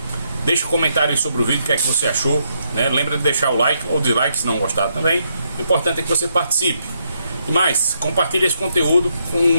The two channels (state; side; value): inverted; both; correlation -0.77